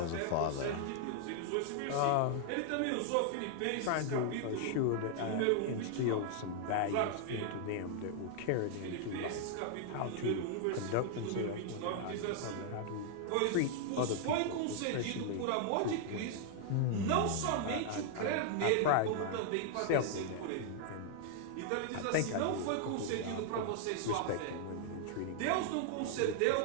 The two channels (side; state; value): both; different; correlation 0.00